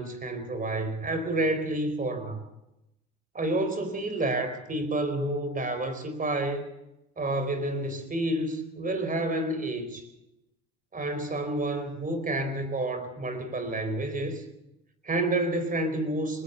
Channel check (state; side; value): normal; both; correlation 0.31